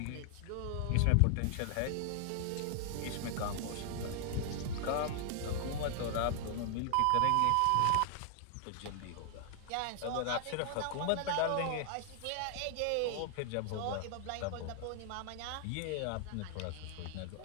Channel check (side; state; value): both; different; correlation 0.00